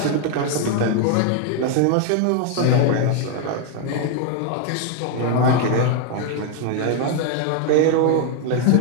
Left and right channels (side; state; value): both; different; correlation 0.01